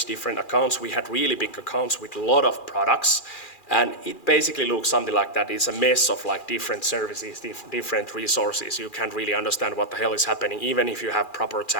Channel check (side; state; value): right; late; 2.4 ms